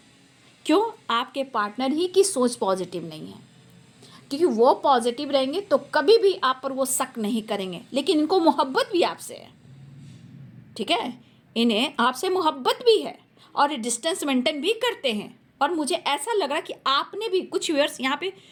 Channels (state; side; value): identical; both; correlation 1.00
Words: क्यों? आपके पार्टनर ही की सोच पॉजिटिव नहीं है, क्योंकि वो पॉजिटिव रहेंगे तो कभी भी आप पर वो शक नहीं करेंगे, लेकिन इनको मोहब्बत भी आपसे है। ठीक है, इन्हें आपसे मोहब्बत भी है और डिस्टेंस मेंटेन भी करते हैं। और मुझे ऐसा लग रहा कि आपने भी कुछ व्यूअर्स, यहाँ पे